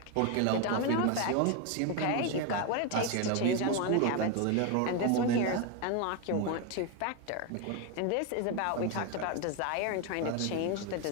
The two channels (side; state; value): both; different; correlation 0.02